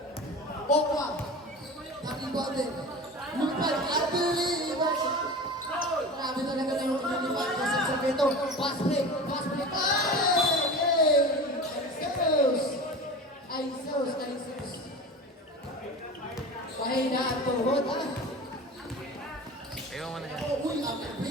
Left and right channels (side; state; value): both; normal; correlation 0.33